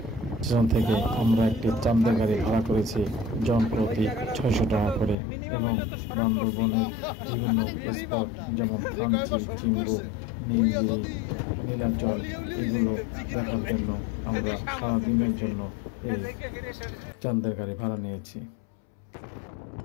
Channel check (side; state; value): right; drops out; at 5.2 s